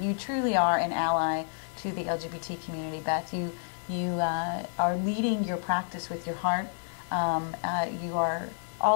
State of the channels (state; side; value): silent; right; 58 dB below the other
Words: You truly are an ally to the LGBT community, Beth. You are leading your practice with your heart. You are